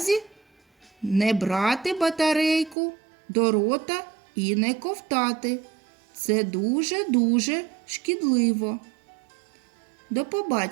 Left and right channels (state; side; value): drops out; left; at 2.8 s